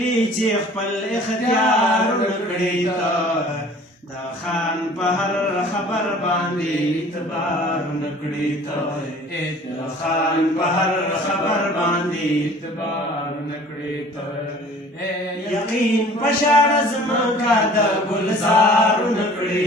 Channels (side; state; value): both; normal; correlation 0.49